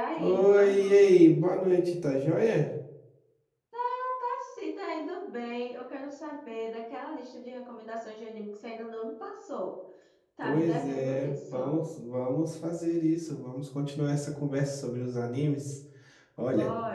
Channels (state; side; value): identical; both; correlation 1.00